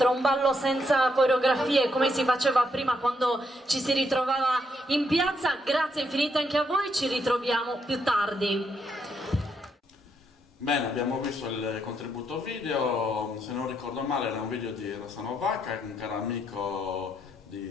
un ballo senza coreografie come si faceva prima quando ci si ritrovava in piazza. Grazie infinite anche a voi, ci ritroviamo più tardi. Bene, abbiamo visto il contributo video, se non ricordo male era un video di Rossano Vacca, un caro amico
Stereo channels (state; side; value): normal; both; correlation 0.76